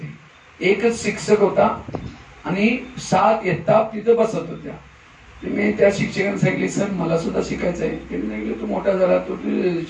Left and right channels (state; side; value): identical; both; correlation 1.00